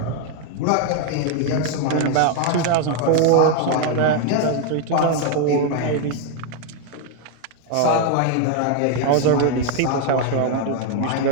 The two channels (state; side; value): different; both; correlation 0.01